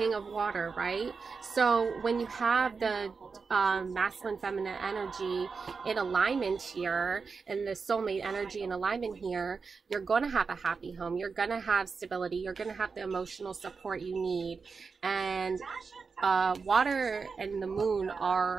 of water, right? So when you have the masculine feminine energy in alignment here and the soulmate energy in alignment here, you're going to have a happy home, you're going to have stability, you're going to have the emotional support you need. And water and the moon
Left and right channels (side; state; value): left; quieter; 5.0 dB